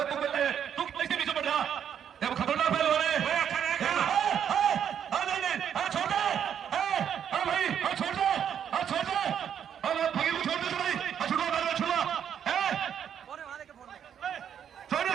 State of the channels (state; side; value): quieter; left; 8.7 dB